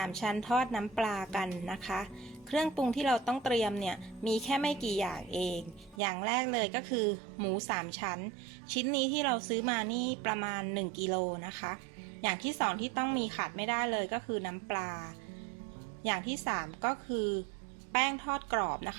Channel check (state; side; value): drops out; left; at 6.0 s